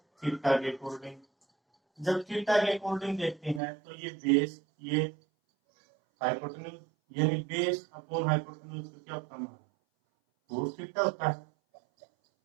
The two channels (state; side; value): drops out; left; at 3.6 s